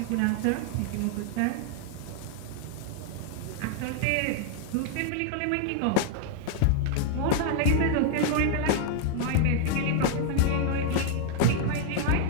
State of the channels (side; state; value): both; different; correlation 0.00